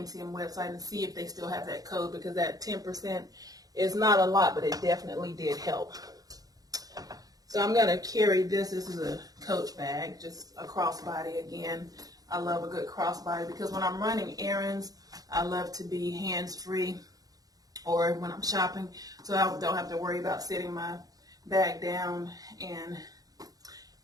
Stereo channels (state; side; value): late; left; 0.18 ms